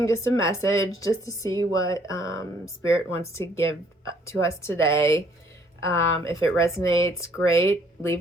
just a message, just to see what Spirit wants to give to us today. If it resonates, great.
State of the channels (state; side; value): normal; both; correlation 0.63